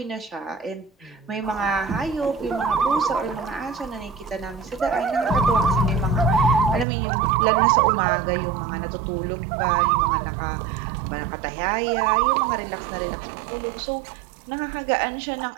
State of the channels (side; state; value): left; drops out; at 6.9 s